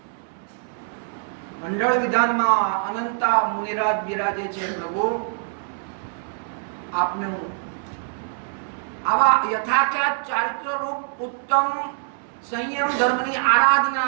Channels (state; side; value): silent; left; 63 dB below the other